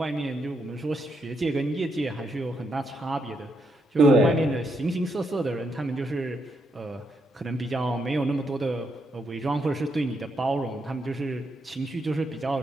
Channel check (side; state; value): both; normal; correlation 0.79